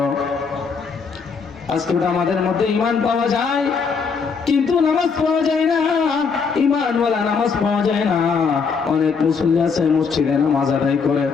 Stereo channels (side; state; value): right; quieter; 5.5 dB